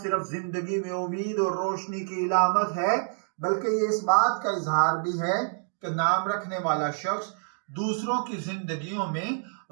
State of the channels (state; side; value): silent; left; digital silence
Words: जिंदगी में उम्मीद और रोशनी की इलामत है बल्कि ये इस बात का इजहार भी है कि नाम रखने वाला शख्स दूसरों की जिंदगियों में